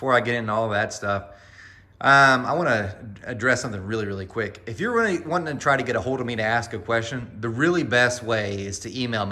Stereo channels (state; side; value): identical; both; correlation 1.00